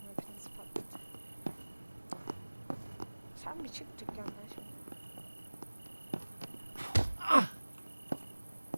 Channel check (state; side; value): inverted; both; correlation -1.00